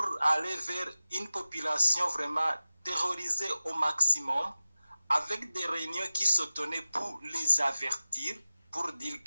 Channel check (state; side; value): inverted; both; correlation -0.96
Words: aller vers une population vraiment terrorisée au maximum, avec des réunions qui se tenaient pour les avertir, pour dire